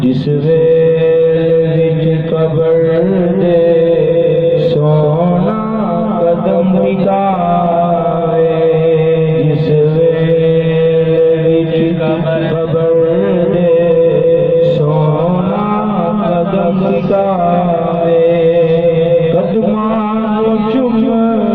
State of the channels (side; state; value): both; identical; correlation 1.00